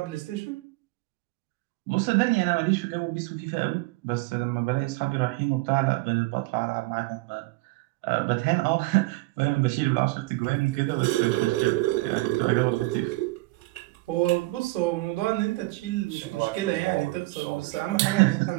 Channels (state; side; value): quieter; left; 21.6 dB